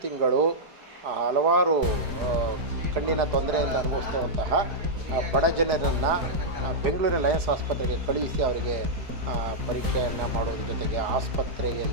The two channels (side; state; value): left; late; 4.8 ms